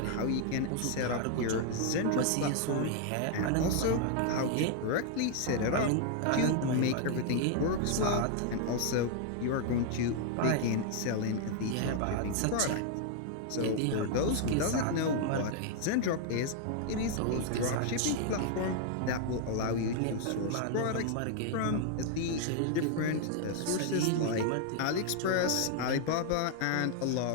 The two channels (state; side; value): different; both; correlation 0.00